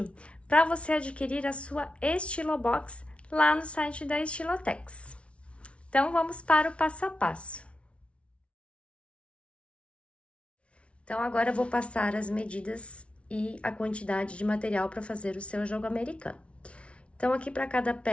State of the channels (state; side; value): late; right; 0.061 ms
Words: para você adquirir a sua Estilobox lá no site da Estilotex. Então, vamos para o passo a passo. Então, agora eu vou passar as medidas e a quantidade de material para fazer o seu jogo americano. Então, aqui para cada